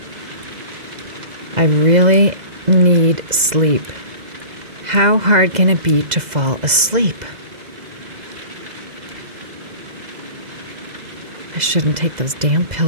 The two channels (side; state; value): left; late; 2.0 ms